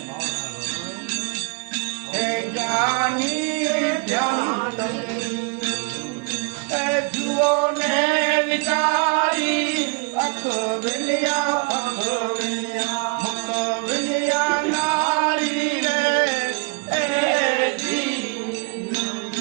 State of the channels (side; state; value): left; quieter; 33.0 dB